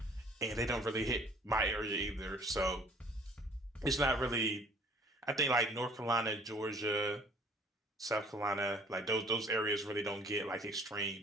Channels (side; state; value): both; normal; correlation 0.54